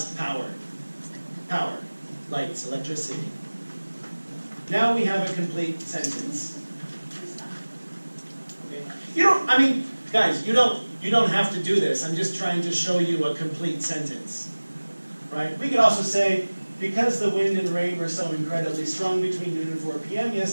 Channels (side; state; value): both; inverted; correlation -1.00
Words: power. Power, lights, electricity. Now we have a complete sentence. Okay. Guys, you don't have to do this. I'm just trying to show you a complete sentence. Right? We could also say, because the wind and rain were so incredibly strong between noon and 4 p.m.